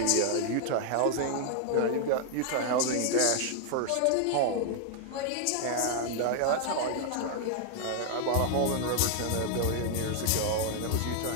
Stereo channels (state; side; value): different; both; correlation 0.00